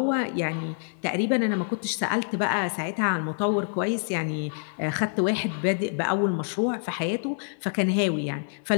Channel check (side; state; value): right; silent; 60 dB below the other